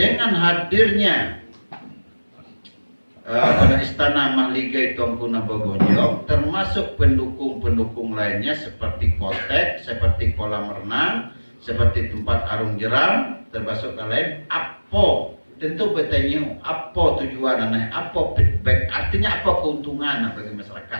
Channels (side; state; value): both; inverted; correlation -1.00